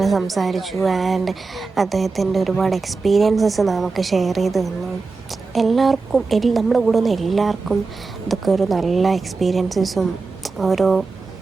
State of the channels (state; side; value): quieter; left; 4.1 dB